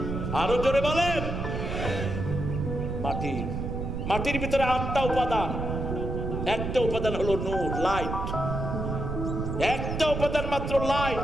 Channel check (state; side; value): noise; right; rumble, 3 dB below the sound